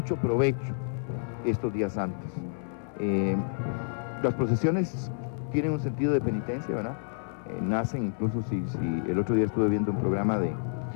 provecho estos días santos. Las procesiones tienen un sentido de penitencia, ¿verdad? Nacen incluso, si el otro día estuve viendo un programa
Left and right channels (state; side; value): silent; right; 58 dB below the other